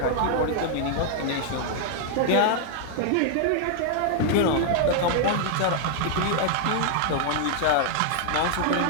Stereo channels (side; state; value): both; different; correlation -0.01